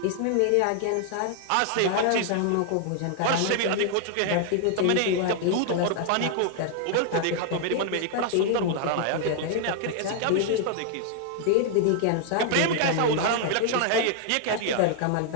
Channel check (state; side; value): different; both; correlation 0.00